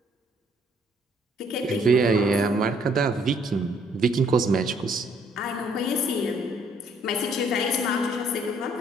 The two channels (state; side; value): normal; both; correlation 0.65